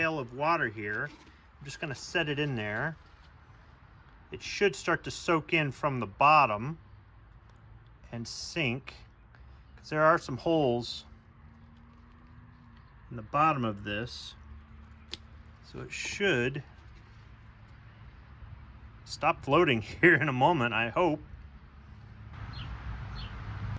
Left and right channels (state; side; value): identical; both; correlation 1.00